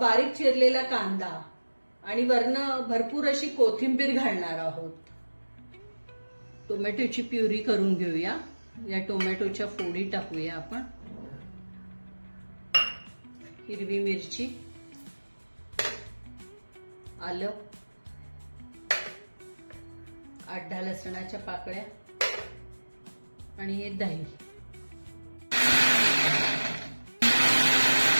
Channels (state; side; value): inverted; both; correlation -1.00